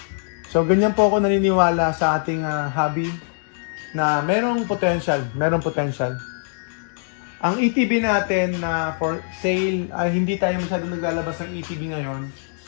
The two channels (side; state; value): right; silent; digital silence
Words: So ganyan po ako naniniwala sa ating hobby na merong potential. Ang ETB natin na for sale ay hindi tayo masyadong naglalabas ng ETB ngayon.